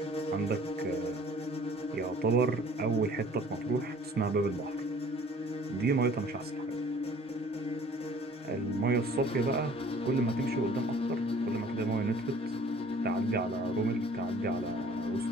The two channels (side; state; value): both; normal; correlation 0.52